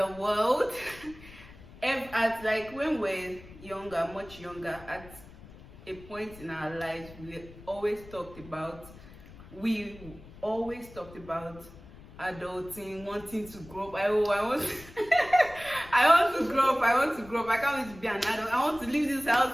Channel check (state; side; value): noise; left; rumble, 19 dB below the sound